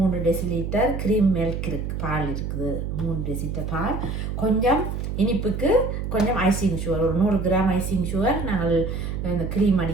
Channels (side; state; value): right; noise; hum, 4 dB below the sound